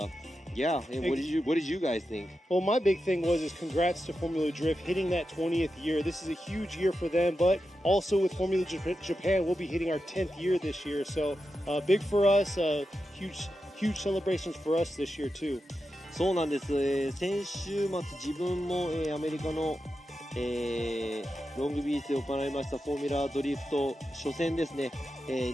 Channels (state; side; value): normal; both; correlation 0.89